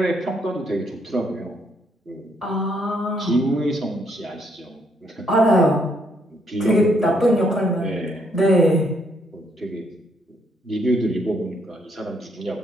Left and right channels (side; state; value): both; normal; correlation 0.72